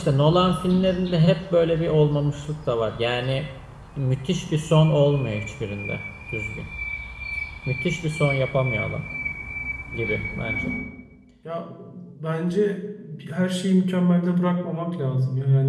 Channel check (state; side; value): identical; both; correlation 1.00